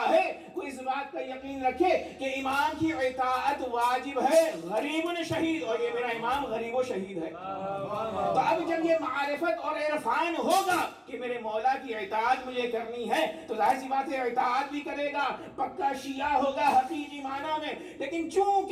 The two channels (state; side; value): identical; both; correlation 1.00